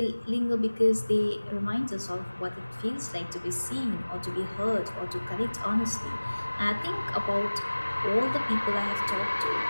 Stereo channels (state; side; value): inverted; both; correlation -1.00